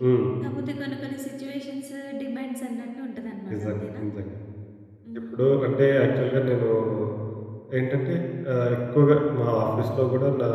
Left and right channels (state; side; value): identical; both; correlation 1.00